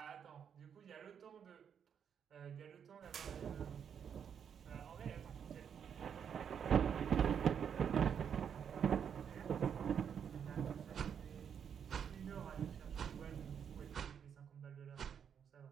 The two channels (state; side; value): quieter; left; 7.8 dB